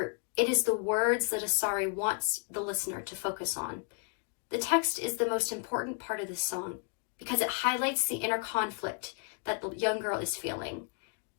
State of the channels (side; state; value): right; quieter; 38.5 dB